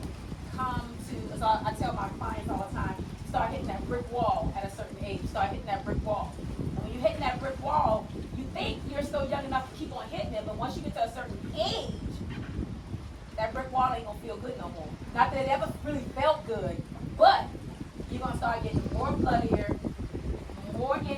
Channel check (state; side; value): identical; both; correlation 1.00